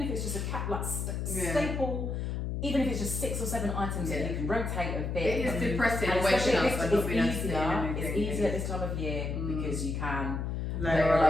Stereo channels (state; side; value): noise; left; hum, 2 dB below the sound